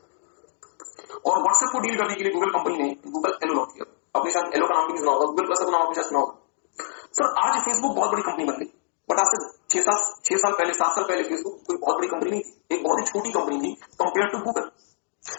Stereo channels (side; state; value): right; silent; digital silence